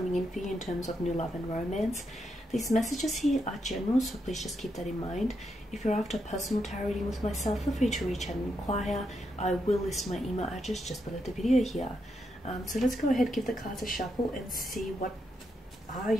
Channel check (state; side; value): normal; both; correlation 0.82